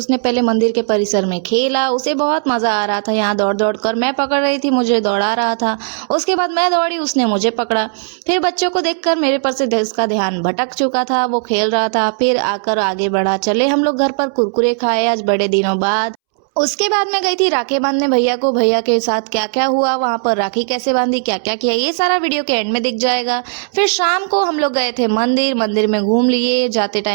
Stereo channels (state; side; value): silent; left; 69 dB below the other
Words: पहले मंदिर के परिसर में खेला, उसे बहुत मज़ा आ रहा था। यहाँ दौड़ दौड़ कर मैं पकड़ रही थी, मुझे दौड़ा रहा था। उसके बाद मैं दौड़ी, उसने मुझे पकड़ा। फिर बच्चों को देखकर मेरे पर से उसका ध्यान भटक चुका था, वो खेल रहा था। फिर आकर आगे बढ़ा। चले हम लोग घर पर, कुरकुरे खाए आज बड़े दिनों बाद। उसके बाद मैं गई थी राखी बांधने भैया को। भैया के साथ क्या क्या हुआ, वहाँ पर राखी कैसे बांधी, क्या क्या किया, ये सारा वीडियो के एंड में दिख जाएगा। फिर शाम को हम लोग गए थे मंदिर। मंदिर में घूम लिए, जाते